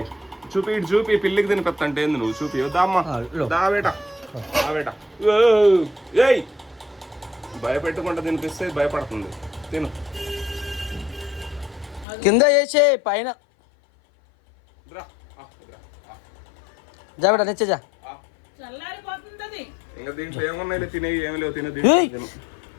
చూపి పిల్లికి తినిపెత్తంటే ఏంది నువ్వు? చూపి దామ్మా దావేట. ఏయ్ భయపెట్టుకుంటా తినిపిస్తే భయపడుతుంది. తిను. కింద వేసే పైన జాబెట నెచ్చా. ఇంకా దీంట్లో ఏమున్నాయి? తినే ఏమి లేవు. తినే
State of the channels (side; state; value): right; drops out; at 12.1 s